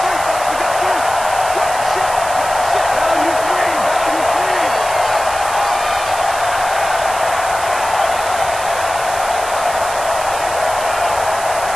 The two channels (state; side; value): noise; right; hiss, 10 dB below the sound